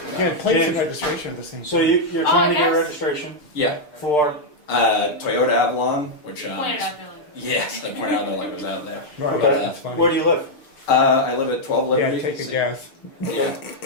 Yeah, plates and James. registration are the same. So you're Oh, trying to get yes. registration Yeah. for, Toyota Avalon, which Pointed out there, like, yes, I pointed out that like was out there. Right, okay. that's funny. Where do you live? I live at 12 Yeah, Liberty. take a guess. Yeah,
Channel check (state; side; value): late; right; 6.8 ms